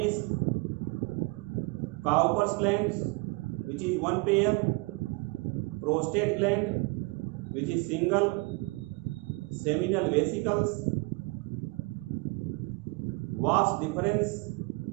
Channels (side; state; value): left; quieter; 27.2 dB